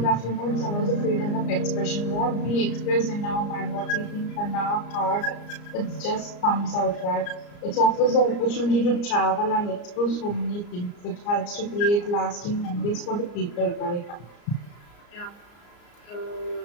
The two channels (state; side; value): late; right; 34 ms